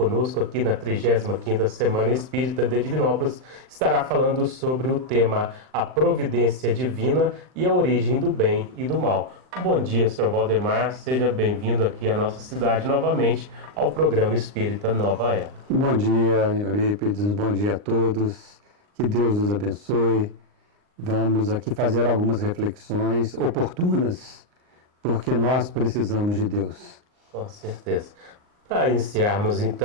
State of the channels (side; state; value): left; late; 39 ms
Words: aqui na 35ª Semana Espírita de Divinópolis, estará falando sobre o tema A Providência Divina e a Origem do Bem e do Mal. Bom dia, senhor Valdemar, seja bem-vindo aqui à nossa cidade novamente ao programa Espírita Nova Era. Bom dia, Eurípides, bom dia a todos, que Deus nos abençoe. Vamos aqui fazer algumas reflexões oportunas, porque nós precisamos de Deus. Com certeza. Para iniciarmos,